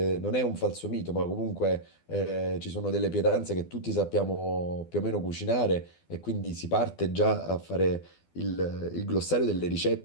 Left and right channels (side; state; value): right; late; 12 ms